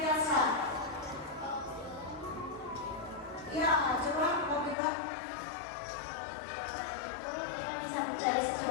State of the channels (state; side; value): drops out; right; at 4.8 s